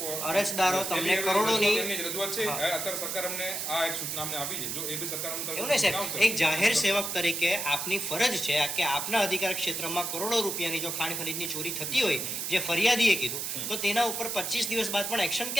અરજદારો તમને કરોડોની એમની જ રજૂઆત છે. અત્યારે સરકાર અમને આ એક સૂચના અમને આપી છે. જો એ બી સરકાર અમને એવું નહીં સાહેબ, એક જાહેર સેવક તરીકે આપની ફરજ છે કે આપના અધિકાર ક્ષેત્રમાં કરોડો રૂપિયાની જો ખાણ ખનીજની ચોરી થતી હોય જે ફરિયાદીએ કીધું, તો તેના ઉપર 25 દિવસ બાદ પણ એક્શન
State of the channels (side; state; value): right; noise; hiss, 3 dB below the sound